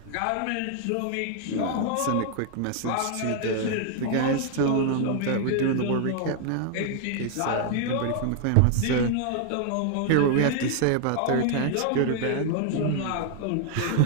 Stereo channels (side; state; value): both; different; correlation 0.00